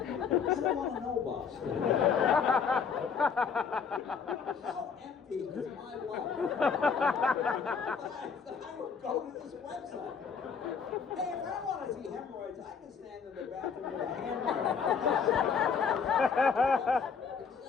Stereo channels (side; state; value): right; quieter; 6.2 dB